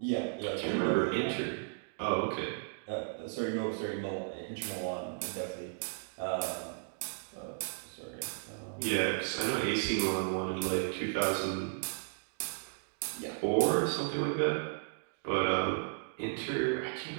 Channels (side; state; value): left; silent; digital silence